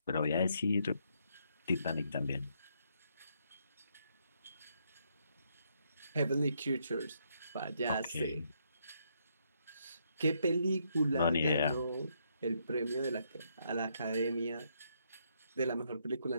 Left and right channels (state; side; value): inverted; both; correlation -0.75